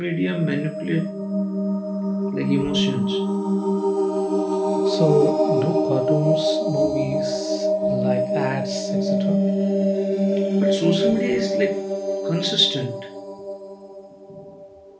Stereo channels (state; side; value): identical; both; correlation 1.00